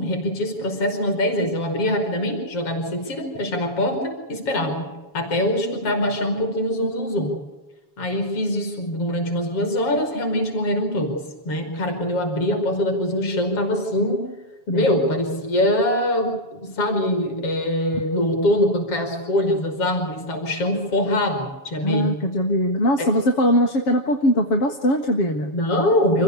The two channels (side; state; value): right; late; 7.1 ms